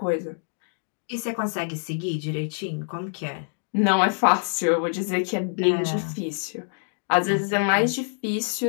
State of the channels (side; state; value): right; silent; digital silence